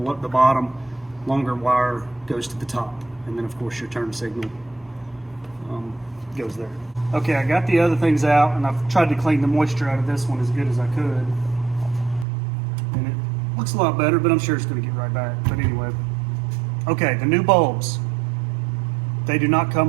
Longer wire goes to the top, and then of course your turn signal goes there. Okay, I got the other things out, and I've tried to clean the moisture out of this one as good as I could, and it looks a lot better, but I'm sure it's going to get right back. But anyway, okay, the new bulbs, they do not come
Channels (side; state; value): left; drops out; at 12.2 s